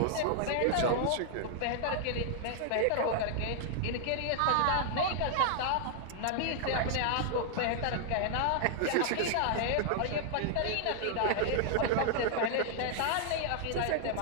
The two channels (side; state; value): both; different; correlation -0.01